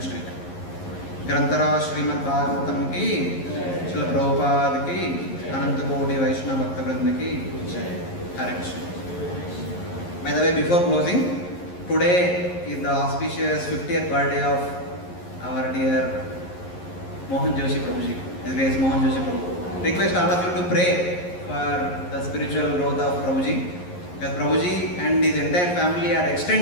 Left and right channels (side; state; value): right; late; 11 ms